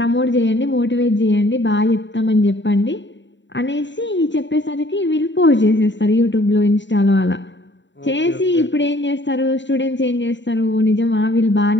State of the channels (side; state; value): right; late; 0.53 ms